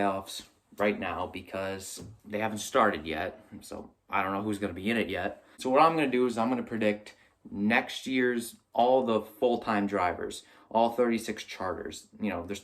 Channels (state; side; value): identical; both; correlation 1.00